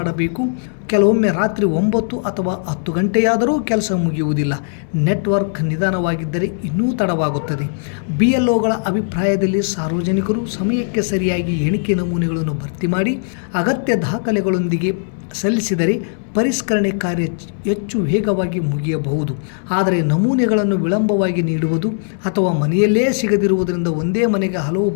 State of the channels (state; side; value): silent; right; 63 dB below the other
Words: ಕೆಲವೊಮ್ಮೆ ರಾತ್ರಿ 9 ಅಥವಾ 10 ಗಂಟೆಯಾದರೂ ಕೆಲಸ ಮುಗಿಯುವುದಿಲ್ಲ. ನೆಟ್ವರ್ಕ್ ನಿಧಾನವಾಗಿದ್ದರೆ ಇನ್ನೂ ತಡವಾಗುತ್ತದೆ. BLOಗಳ ಅಭಿಪ್ರಾಯದಲ್ಲಿ ಸಾರ್ವಜನಿಕರು ಸಮಯಕ್ಕೆ ಸರಿಯಾಗಿ ಎಣಿಕೆ ನಮೂನೆಗಳನ್ನು ಭರ್ತಿ ಮಾಡಿ ಅಗತ್ಯ ದಾಖಲೆಗಳೊಂದಿಗೆ ಸಲ್ಲಿಸಿದರೆ ಪರಿಷ್ಕರಣೆ ಕಾರ್ಯ ಹೆಚ್ಚು ವೇಗವಾಗಿ ಮುಗಿಯಬಹುದು. ಆದರೆ ನಮೂನೆಗಳನ್ನು ವಿಳಂಬವಾಗಿ ನೀಡುವುದು ಅಥವಾ ಮನೆಯಲ್ಲೇ ಸಿಗದಿರುವುದರಿಂದ ಒಂದೇ ಮನೆಗೆ ಹಲವು